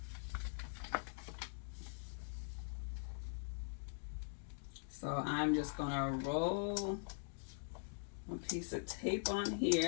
So I'm just gonna roll a piece of tape on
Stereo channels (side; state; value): right; silent; digital silence